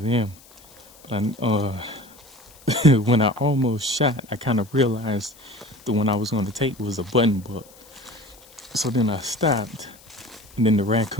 them. But when I almost shot, I kind of realized the one I was going to take was a button buck. So then I stopped, and then the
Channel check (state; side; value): noise; left; hiss, 24 dB below the sound